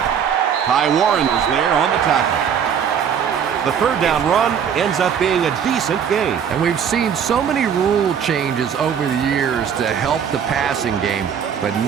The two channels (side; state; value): left; quieter; 7.8 dB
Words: Ty Warren is there on the tackle. The third down run ends up being a decent gain. And we've seen so many rule changes over the years to help the passing game, but